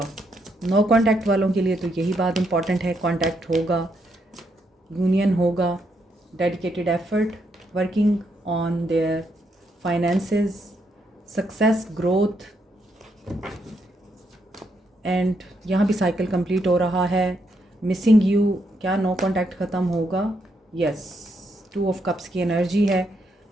नो कॉन्टैक्ट वालों के लिए तो यही बात इम्पॉर्टेंट है, कॉन्टैक्ट होगा, यूनियन होगा, dedicated effort, working on their finances, success, growth and यहाँ भी साइकिल कंप्लीट हो रहा है। मिसिंग यू, क्या नो कॉन्टैक्ट ख़त्म होगा? यस, 2 of Cups की एनर्जी है,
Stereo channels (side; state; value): both; normal; correlation 0.78